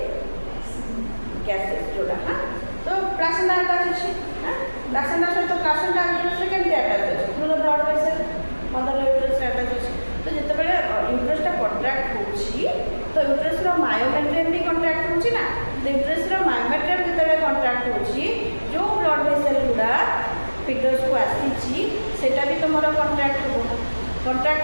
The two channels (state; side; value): inverted; both; correlation -1.00